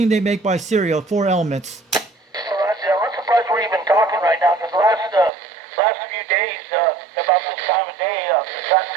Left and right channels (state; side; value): drops out; left; at 5.3 s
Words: they make by Serial, 4 elements. Roger, I'm surprised we're even talking right now, because last few days, about this time of day, the cotton